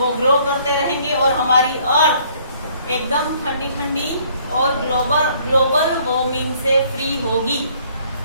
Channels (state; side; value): inverted; both; correlation -0.62